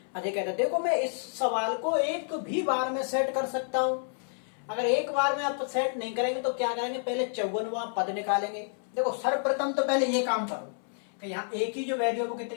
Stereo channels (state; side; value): silent; right; 58 dB below the other